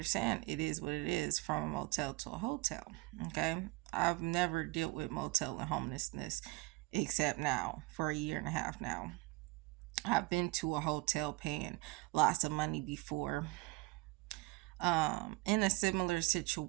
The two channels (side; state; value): left; quieter; 23.1 dB